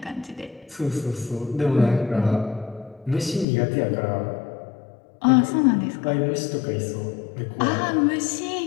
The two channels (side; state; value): right; drops out; at 3.5 s